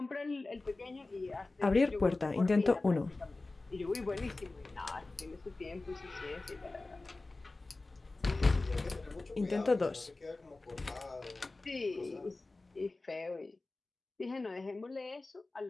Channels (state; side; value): quieter; right; 3.2 dB